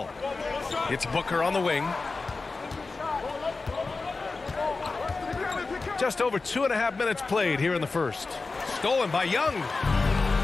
It's Booker on the wing. Just over 2.5 minutes played here in the first. Stolen by Young.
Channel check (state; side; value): quieter; right; 3.9 dB